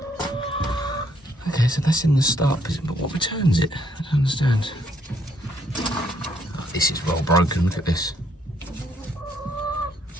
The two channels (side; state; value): both; normal; correlation 0.69